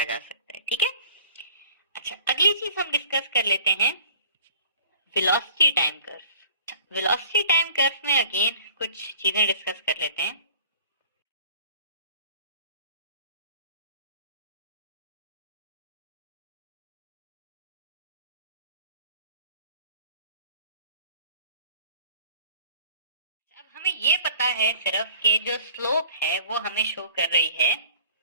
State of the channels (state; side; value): inverted; both; correlation -0.48